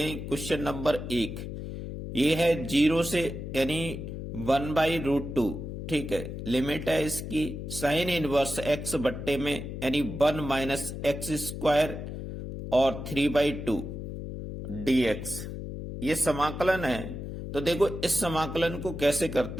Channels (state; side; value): noise; left; hum, 7 dB below the sound